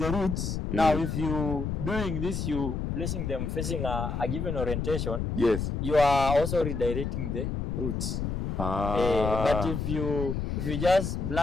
roots, now if you doing this, you placing them facing a given orientation, Yes. you are also redirecting the roots. But if you just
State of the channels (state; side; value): noise; left; rumble, 2 dB below the sound